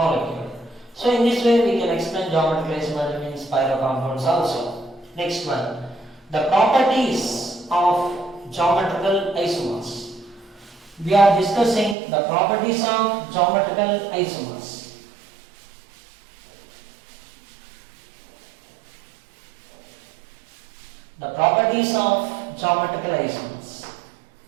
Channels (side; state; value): left; drops out; at 12.0 s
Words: So in this way we can explain geometrical isomerism in spiral compounds also. Next one, the properties of geometrical isomers. We are discussing the properties of geometrical isomers. The properties of geometrical isomers.